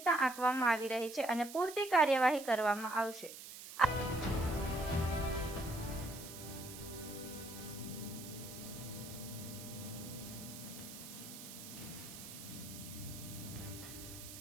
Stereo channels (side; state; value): right; noise; hiss, 12 dB below the sound